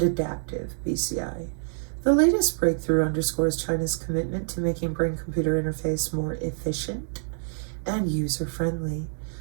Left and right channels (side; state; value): left; silent; digital silence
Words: adaptive BCI. The latest breakthrough underscores China's commitment to making brain-computer interface more efficient and user-friendly